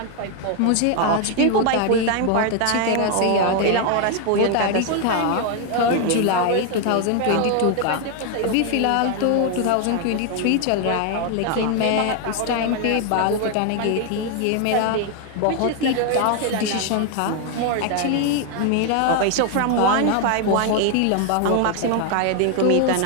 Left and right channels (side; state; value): both; different; correlation 0.01